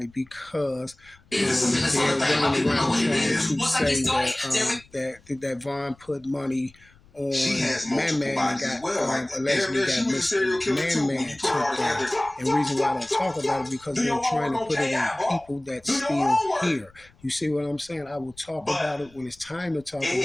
because they're running around trying to say that Von put money She on has Man multiple Man and bodies as got well. Like damn allegedly near, she got was a serial Mr. killer Man too. When Man you put it all took together. down. And the reason why I don't talk about it because Do they're your trying to homework on put it on KI, bro. people that's Do your still homework. here. You see what I'm saying? I will talk But about it when it's time to talk it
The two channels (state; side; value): noise; left; rumble, 28 dB below the sound